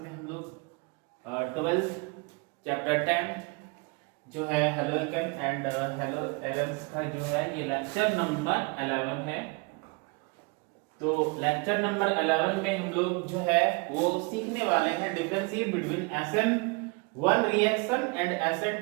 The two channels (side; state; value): left; quieter; 29.8 dB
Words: हम लोग 12th चैप्टर 10 जो है halo alkane and hello Aaron's का जो है ये लेक्चर नंबर 11 है। तो लेक्चर नंबर 11 में हम लोग जो है वो सीखने वाले हैं differentiate between SN1 reaction and